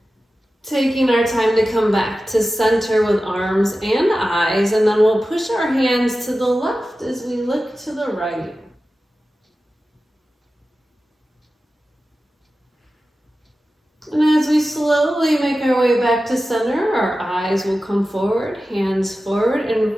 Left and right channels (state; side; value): normal; both; correlation 0.94